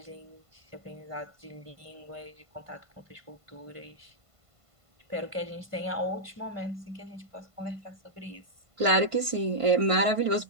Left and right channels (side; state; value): left; late; 1.5 ms